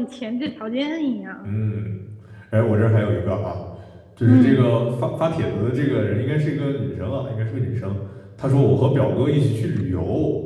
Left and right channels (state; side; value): identical; both; correlation 1.00